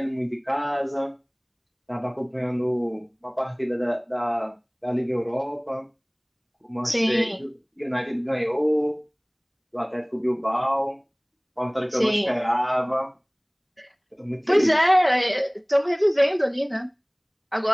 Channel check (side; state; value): both; identical; correlation 1.00